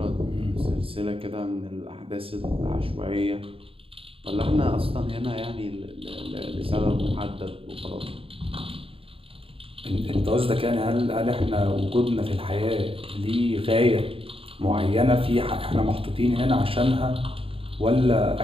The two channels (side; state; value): left; late; 0.27 ms